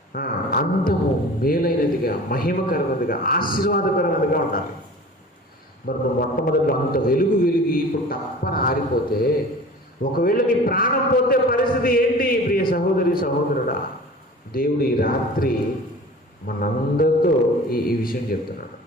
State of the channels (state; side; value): normal; both; correlation 0.41